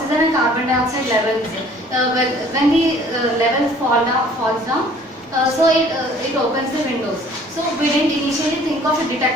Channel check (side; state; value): both; normal; correlation 0.54